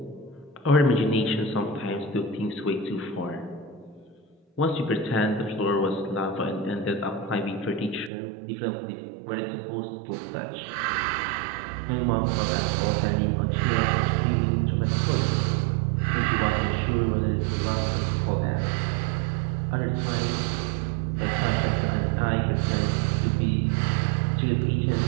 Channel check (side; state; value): left; drops out; at 8.1 s